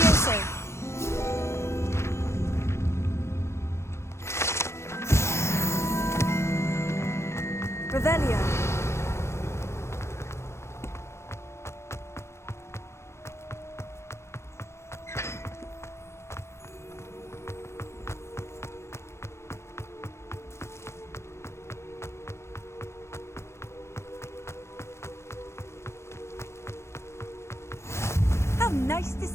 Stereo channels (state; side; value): late; right; 0.13 ms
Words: Revelio. How nice to